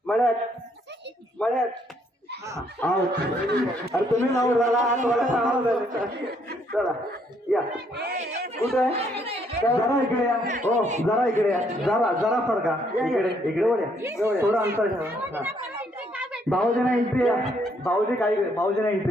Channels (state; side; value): normal; both; correlation 0.70